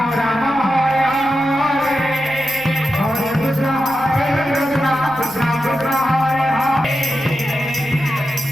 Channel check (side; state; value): right; noise; rumble, 23 dB below the sound